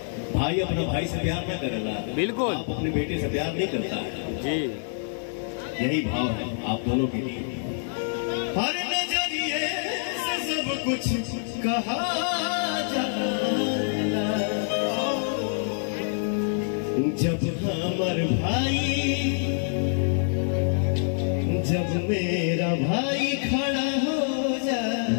भाई अपना भाई से प्यार ना करेला, बिल्कुल आप अपने बेटे से प्यार नहीं करता है जी। यही भाव है आप दोनों के लिए। हर नजरिए से सब कुछ कहा जाना, जब हमर भाई, जब मेरा भाई खड़ा हो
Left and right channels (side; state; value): right; silent; digital silence